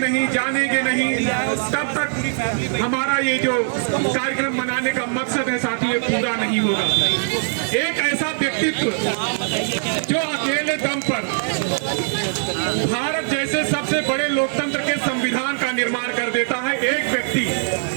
जानेंगे नहीं, तब तक हमारा ये जो कार्यक्रम मनाने का मकसद है साथियों पूरा नहीं होगा। एक ऐसा व्यक्तित्व जो अकेले दम पर भारत जैसे सबसे बड़े लोकतंत्र के संविधान का निर्माण कर देता है, एक व्यक्ति,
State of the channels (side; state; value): left; silent; digital silence